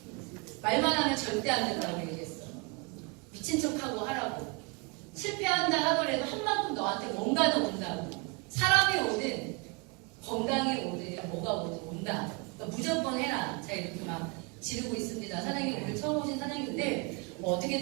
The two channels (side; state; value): left; quieter; 30.6 dB